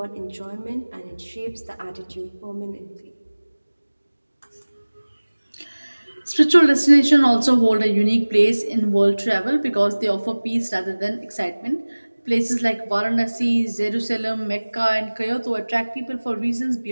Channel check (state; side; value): inverted; both; correlation -1.00